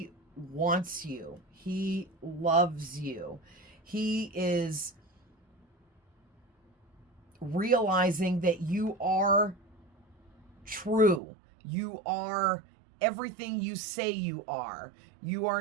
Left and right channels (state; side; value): drops out; left; at 11.2 s